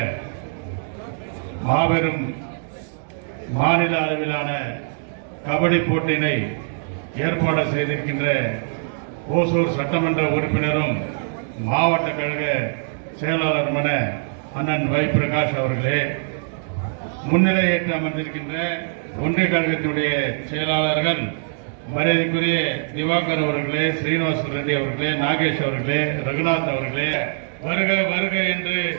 மாபெரும் மாநில அளவிலான கபடி போட்டியினை ஏற்பாடு செய்திருக்கின்ற ஓசூர் சட்டமன்ற உறுப்பினரும் மாவட்ட கழக செயலாளருமான அண்ணன் வை பிரகாஷ் அவர்களே, முன்னிலையேற்று அமர்ந்திருக்கின்ற ஒன்றிய கழகத்தினுடைய செயலாளர்கள் மரியாதைக்குரிய திவாகர் அவர்களே, ஸ்ரீனிவாச ரெட்டி அவர்களே, நாகேஷ் அவர்களே, ரகுநாத் அவர்களே, வருக வருக என்று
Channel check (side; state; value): left; silent; digital silence